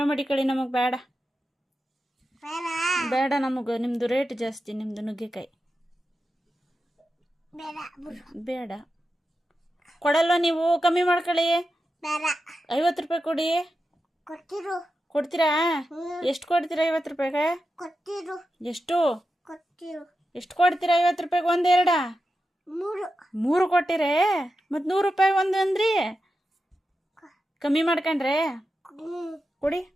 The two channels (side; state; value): both; normal; correlation 0.90